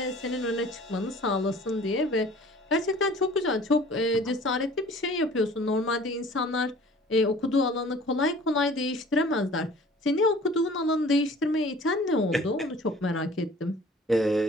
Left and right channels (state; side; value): normal; both; correlation 0.48